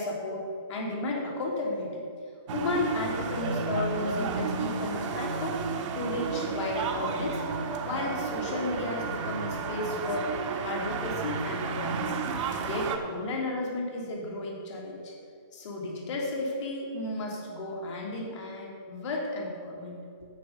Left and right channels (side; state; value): both; inverted; correlation -0.32